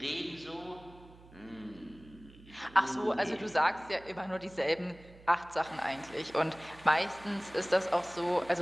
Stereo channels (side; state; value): right; noise; hum, 22 dB below the sound